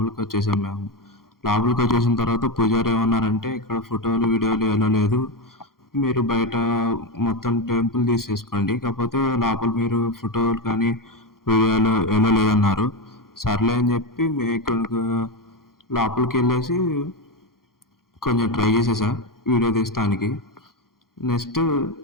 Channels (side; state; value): right; late; 0.92 ms